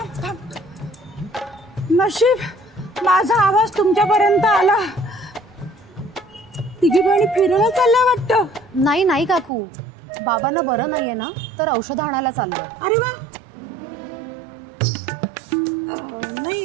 नशीब माझा आवाज तुमच्यापर्यंत आला. तिघी बहिणी फिरायला चालल्या वाटतं. नाही काकू, बाबांना बरं नाहीये ना, तर औषध आणायला चाललोय. अरे वा.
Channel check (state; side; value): drops out; left; at 9.5 s